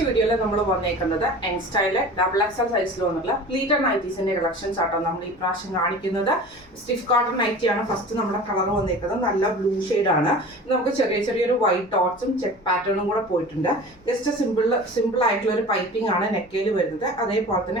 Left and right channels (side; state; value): both; normal; correlation 0.39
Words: വീഡിയോയിൽ നമ്മൾ വന്നേക്കുന്നത് യങ് സ്റ്റൈലിലെ ഡബിൾ എക്സൽ സൈസിൽ വന്നിട്ടുള്ള പ്ലീറ്റഡ് നൈറ്റീസിന്റെ കളക്ഷൻസ് ആട്ടോ നമ്മൾ ഈ പ്രാവശ്യം കാണിക്കുന്നത്. സ്റ്റിഫ് കോട്ടൺ നൈറ്റിയാണ് ഫസ്റ്റ് നമ്മുടെ കളർ വന്നേക്കുന്നത്. നല്ല ബ്ലൂ ആണ്. നമുക്ക് ചെറിയൊരു വൈറ്റ് ഡോട്ട്സും ചെക്ക് പാറ്റേണും കൂടെ പോയിട്ടുണ്ട്. ജസ്റ്റ് സിമ്പിൾ ആയിട്ടുള്ള ഒരു പൈപ്പിംഗ് ആണ് നെക്കയിൽ വരുന്നത്. അതേപോലെ